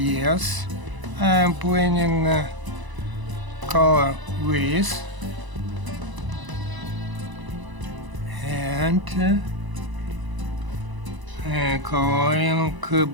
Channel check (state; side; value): late; left; 1.0 ms